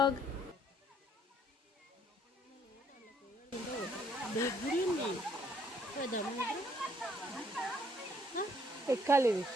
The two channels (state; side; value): normal; both; correlation 0.66